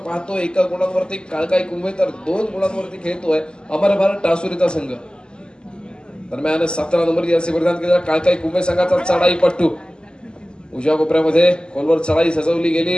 एका गुणांवरती काळकाई कुंभे तर 2 गुणांवरती खेळतोय अमर भारत टासुरीचा संघ. दरम्यान 17 नंबर जर्सी परिधान केलेला काळकाई कुंभे संघाचा चढाई पट्टू. उजव्या कोपऱ्यामध्ये खोलवर चढाई सजवली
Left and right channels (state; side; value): late; right; 0.047 ms